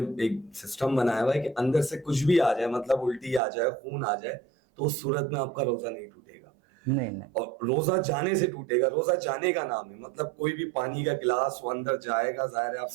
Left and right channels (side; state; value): left; drops out; at 3.4 s